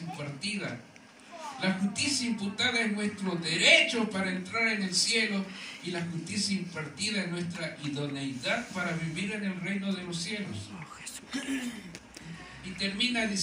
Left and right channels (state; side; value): identical; both; correlation 1.00